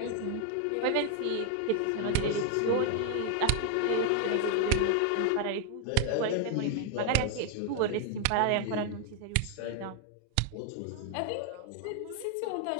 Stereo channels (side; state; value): both; different; correlation 0.00